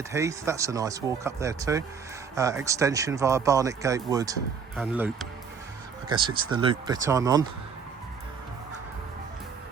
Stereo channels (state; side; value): quieter; left; 6.2 dB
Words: Heath. That's a nice walk up there too. Extension via Barnet Gate Wood and loop. I guess it's the loop bit I'm on.